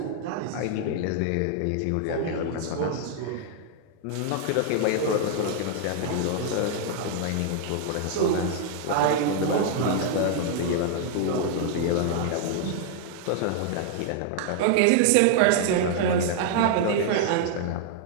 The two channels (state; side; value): different; both; correlation -0.01